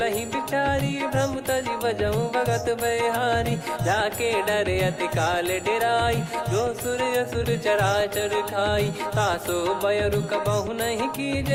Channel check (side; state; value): both; identical; correlation 1.00